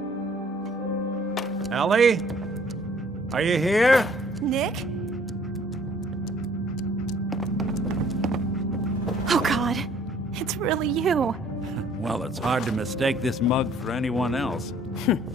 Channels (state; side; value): normal; both; correlation 0.58